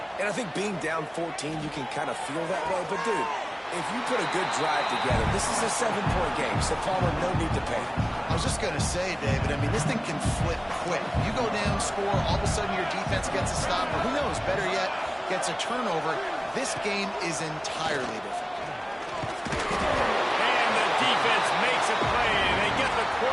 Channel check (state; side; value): identical; both; correlation 1.00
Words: And I think being down 14, you can kind of feel that way. But, dude, if you put a good drive together, this is a 7-point game, so Palmer, no need to pay. I was was just going to say, David, I mean, this thing can flip quick. You go down, score, all of a sudden your defense gets a stop, or who knows, better yet, gets a turnover. This game is entirely different. And the defense makes a play, and they get the